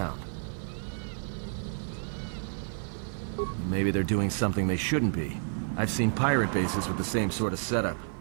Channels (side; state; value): left; silent; 58 dB below the other